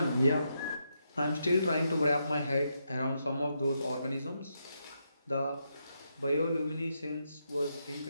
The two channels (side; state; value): both; inverted; correlation -0.82